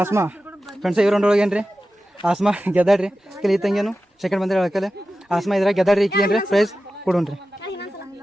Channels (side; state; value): both; normal; correlation 0.94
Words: Asthma friends. ಇವ್ರ ರೌಂಡ್ ಒಳಗೆ ಏನ್ರಿ ಆಸ್ಮಾ ಗೆದ್ದಾಡ್ರಿ. ಕೆಲ ಈ ತಂಗಿಯನು ಸೆಕೆಂಡ್ ಬಂದ್ರೆ ಹೇಳಕ್ಕಲೆ ಆಸ್ಮಾ ಇದ್ರಾಗ ಗೆದ್ದಾಡ್ರಿ. ಈಕಿ ಏನ್ರಿ ಪ್ರೈಸ್ ಕೊಡೋಣ್ರಿ.